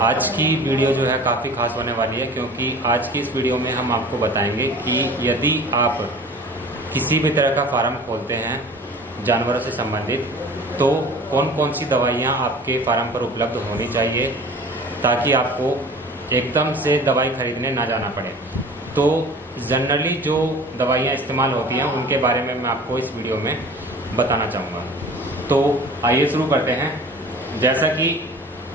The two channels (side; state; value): both; normal; correlation 0.43